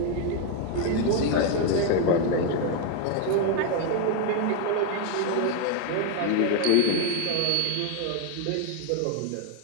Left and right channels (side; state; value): both; different; correlation 0.01